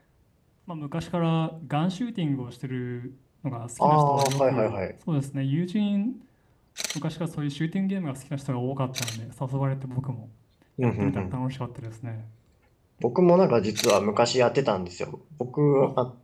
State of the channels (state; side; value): identical; both; correlation 1.00